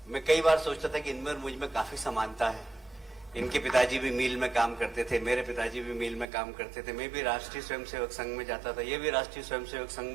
मैं कई बार सोचता था कि इनमें और मुझ में काफी समानता है। इनके पिताजी भी मिल में काम करते थे, मेरे पिताजी भी मिल में काम करते थे, मैं भी राष्ट्रीय स्वयंसेवक संघ में जाता था, ये भी राष्ट्रीय स्वयंसेवक संघ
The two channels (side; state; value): left; drops out; at 6.2 s